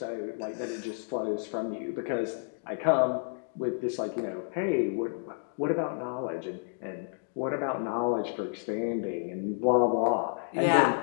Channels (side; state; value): right; silent; digital silence